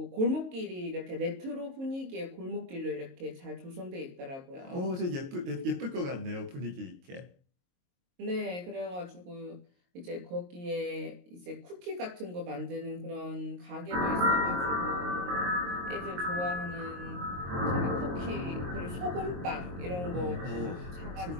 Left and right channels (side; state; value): left; late; 22 ms